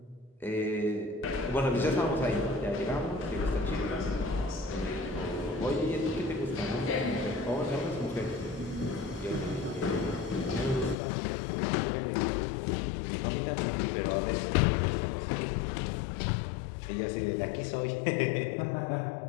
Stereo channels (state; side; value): drops out; right; at 11.0 s